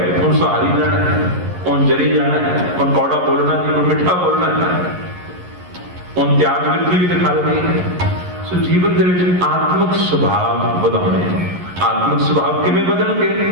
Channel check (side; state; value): left; late; 11 ms